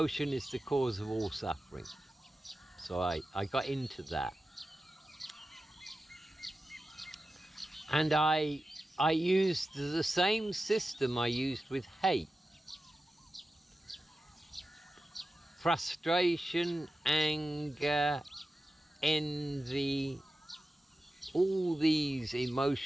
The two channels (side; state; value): both; normal; correlation 0.93